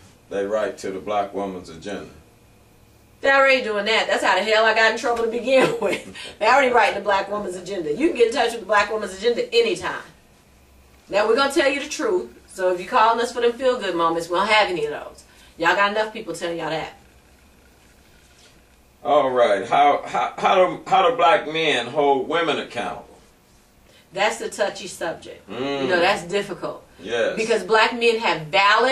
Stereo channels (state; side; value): identical; both; correlation 1.00